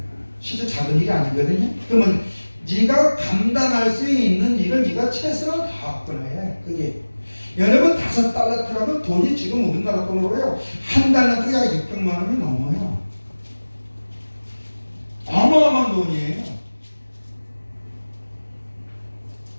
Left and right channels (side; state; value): both; inverted; correlation -1.00